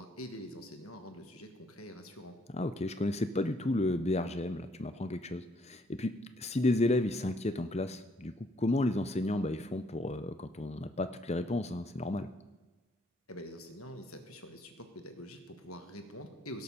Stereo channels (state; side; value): normal; both; correlation 0.67